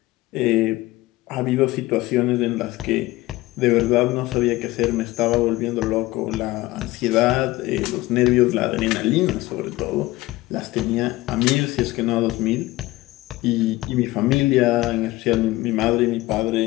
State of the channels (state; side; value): quieter; right; 18.7 dB